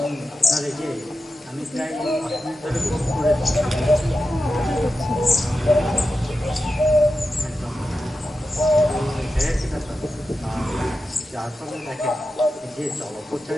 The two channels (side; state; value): both; normal; correlation 0.91